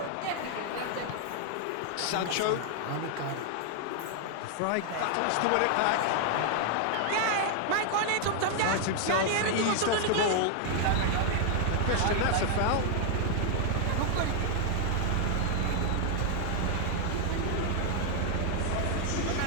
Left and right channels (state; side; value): different; both; correlation 0.00